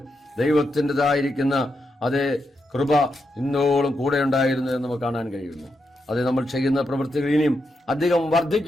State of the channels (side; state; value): both; normal; correlation 0.84